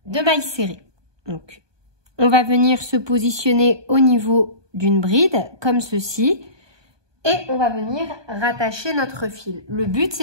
de mailles serrées. Donc, on va venir se positionner au niveau d'une bride comme ceci et on va venir rattacher notre fil. Le but,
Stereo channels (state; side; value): late; left; 1.2 ms